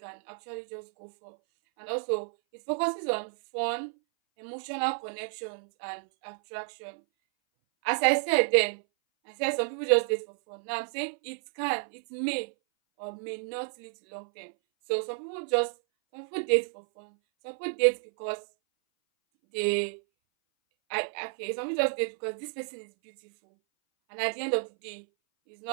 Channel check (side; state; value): left; silent; 57 dB below the other